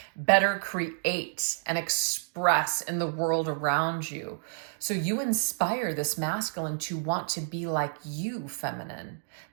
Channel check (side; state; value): left; silent; digital silence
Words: and express in the world around you. So you inspire this masculine to want to be like you, feminine.